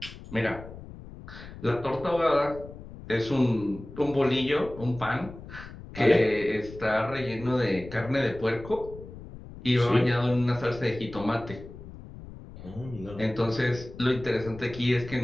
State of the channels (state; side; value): noise; left; rumble, 15 dB below the sound